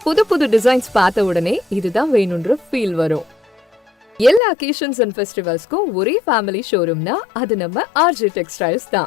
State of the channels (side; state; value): right; drops out; at 4.4 s